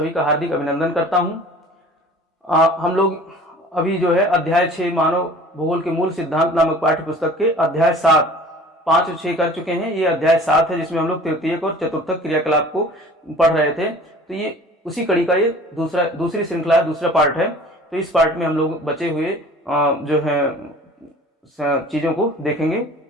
का हार्दिक अभिनंदन करता हूं। हम लोग अभी जो है अध्याय 6 मानव भूगोल के मूल सिद्धांत नामक पाठ्य पुस्तक के अध्याय 7 5 और 6 कर चुके हैं। ये अध्याय 7 है जिसमें हम लोग तृतीयक और चतुर्थक क्रियाकलाप को पढ़ रहे थे। तो ये उसी कड़ी का ये दूसरी श्रृंखला, दूसरा पार्ट है। तो इस पार्ट में हम लोग बचे हुए जो है चीजों को देखेंगे।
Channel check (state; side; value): normal; both; correlation 0.46